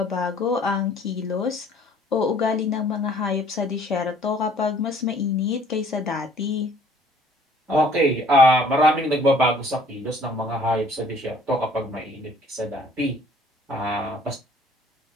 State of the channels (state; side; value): normal; both; correlation 0.56